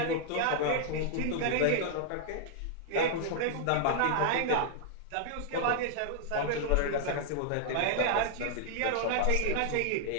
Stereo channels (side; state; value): both; different; correlation 0.00